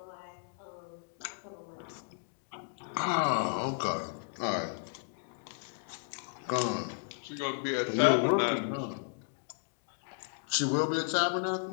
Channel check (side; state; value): right; silent; digital silence